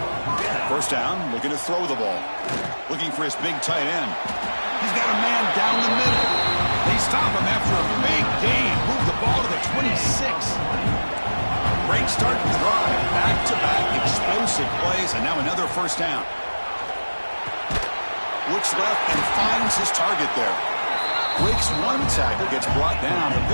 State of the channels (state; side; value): inverted; both; correlation -1.00